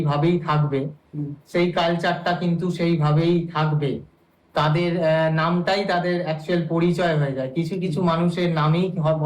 থাকবে, সেই কালচারটা কিন্তু সেইভাবেই থাকবে। তাদের নামটাই তাদের অ্যাকচুয়াল পরিচয় হয়ে যায়। কিছু কিছু মানুষের নামেই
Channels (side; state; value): both; identical; correlation 1.00